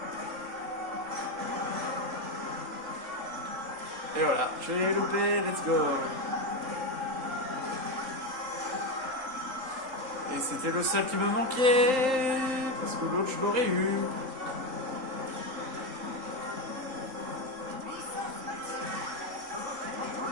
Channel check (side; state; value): left; late; 3.8 ms